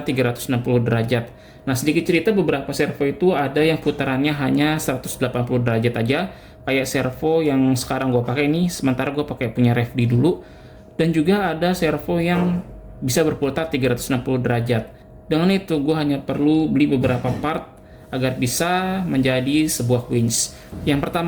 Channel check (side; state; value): both; identical; correlation 1.00